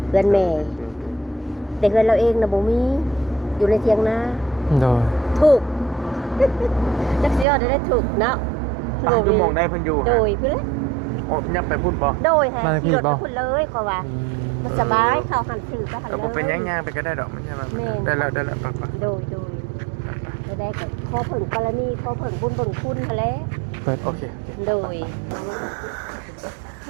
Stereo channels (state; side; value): drops out; left; at 7.5 s